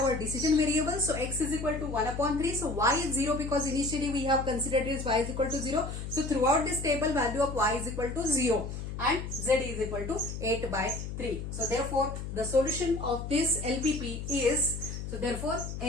our decision variables. So x is equal to 1 upon 3. So y is 0 because initially we have considered this y is equal to 0. So throughout this table value of y is equal to 0. And Z is equal to 8 by 3. So therefore the solution of this LPP is, so therefore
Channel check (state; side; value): noise; left; hum, 7 dB below the sound